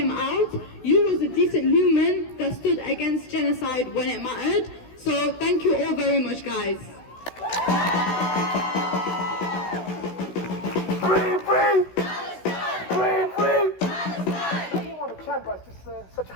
out, you was a decent human that stood against genocide when it mattered. So thank you all very much, guys. Free, free! Free, free! I don't want to chant, but it's just such a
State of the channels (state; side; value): late; right; 16 ms